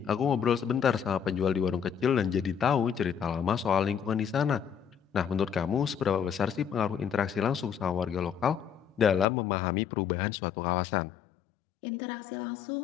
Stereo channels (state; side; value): drops out; right; at 9.2 s